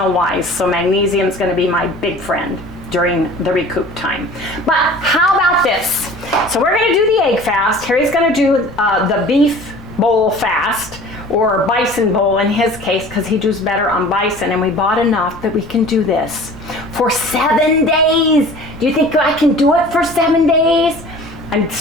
wise. So magnesium is going to be my big friend during the recoup time. But how about this? So we're going to do the egg fast. Harry's going to do the beef bowl fast, or bison bowl in his case, because he does better on bison, and we bought enough that we can do this for 7 days. Do you think I can do it for 7 days? I'm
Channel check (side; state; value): left; noise; rumble, 19 dB below the sound